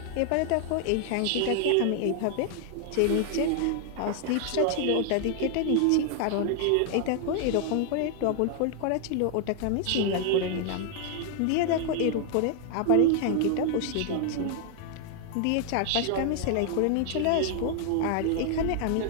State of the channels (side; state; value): both; different; correlation 0.00